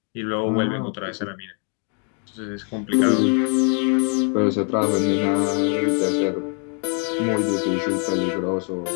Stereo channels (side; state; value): right; quieter; 39.2 dB